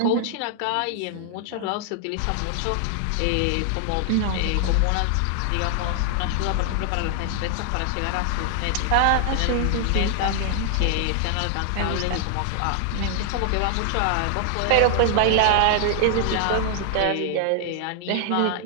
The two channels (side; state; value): both; different; correlation 0.00